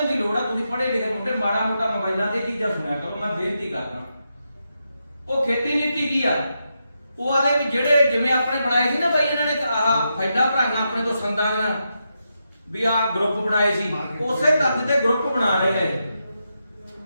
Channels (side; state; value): both; inverted; correlation -0.85